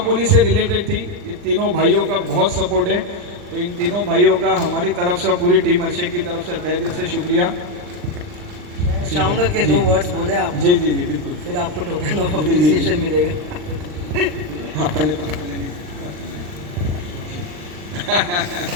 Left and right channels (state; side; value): late; left; 39 ms